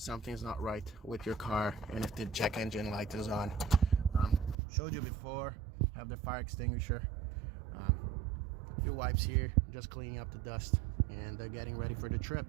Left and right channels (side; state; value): left; drops out; at 4.5 s